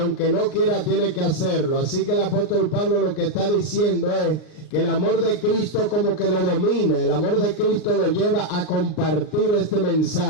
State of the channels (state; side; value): late; right; 39 ms